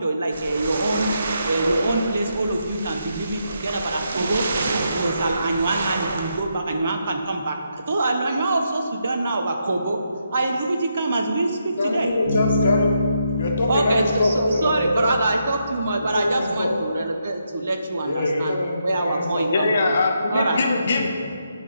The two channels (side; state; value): both; inverted; correlation -0.80